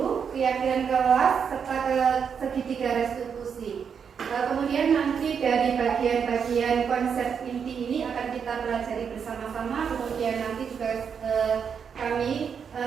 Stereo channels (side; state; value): left; quieter; 6.9 dB